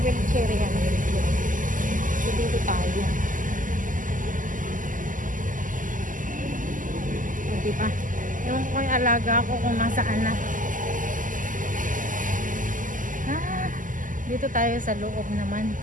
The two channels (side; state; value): left; late; 0.38 ms